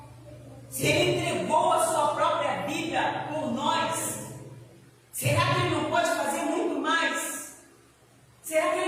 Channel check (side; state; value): both; identical; correlation 1.00